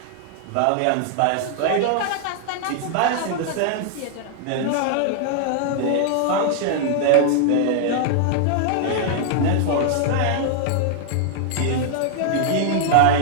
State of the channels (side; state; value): both; different; correlation 0.00